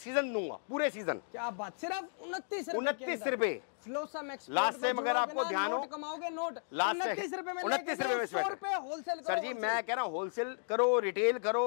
दूंगा, पूरे सीजन। क्या बात, सिर्फ 29 रुपए, 29 रुपए फ्लोसम एक्सपोर्ट में जुड़ोगे ना, नोट कमाओगे, नोट 29 रुपए में लेके जाओ, 100 रुपए होलसेल करो। जी मैं कह रहा हूँ होलसेल करो, रिटेल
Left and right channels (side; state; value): right; silent; digital silence